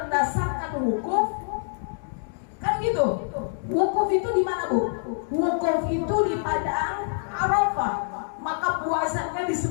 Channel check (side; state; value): right; silent; digital silence